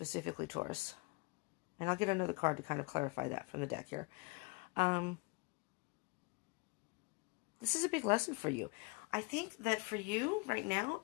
Taurus, and I'll get another card to kind of clarify that from the deck here. This is a big lesson for you. I think that for you right now,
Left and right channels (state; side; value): quieter; right; 27.7 dB